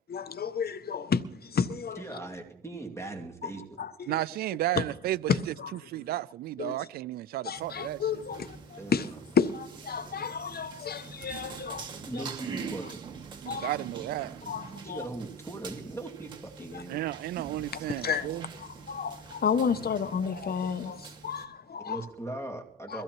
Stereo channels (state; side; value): normal; both; correlation 0.27